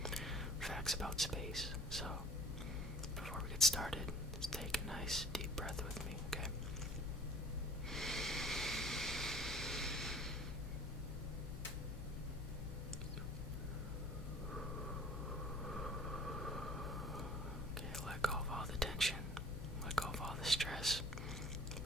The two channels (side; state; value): both; normal; correlation 0.49